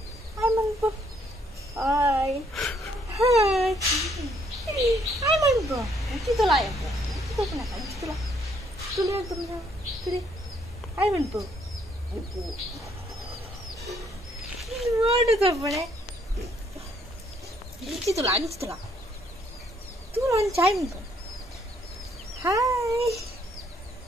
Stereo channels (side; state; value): both; normal; correlation 0.68